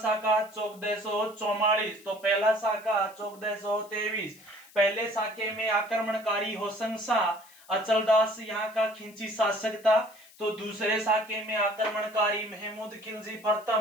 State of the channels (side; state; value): left; noise; hiss, 24 dB below the sound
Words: 1444। तो पहला शाखा 1423। पहले शाखे में आक्रमणकारी होसंग शाह अचलदास यहाँ का खिंची शासक था। तो दूसरे शाखे में आक्रमणकारी महमूद खिलजी